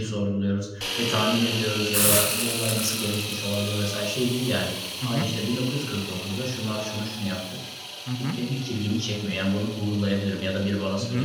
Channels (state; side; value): identical; both; correlation 1.00